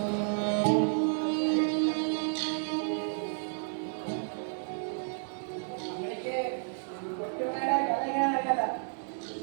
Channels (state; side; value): silent; left; digital silence